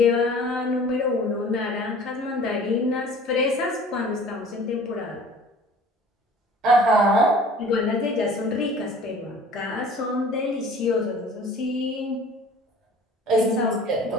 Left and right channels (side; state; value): both; normal; correlation 0.47